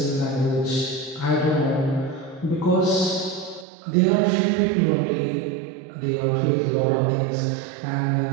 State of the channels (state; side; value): drops out; left; at 3.7 s